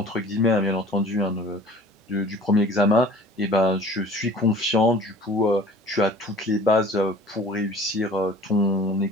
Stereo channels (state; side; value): normal; both; correlation 0.46